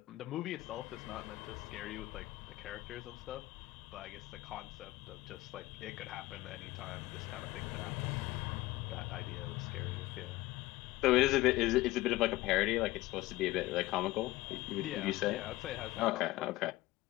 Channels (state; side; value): quieter; right; 18.1 dB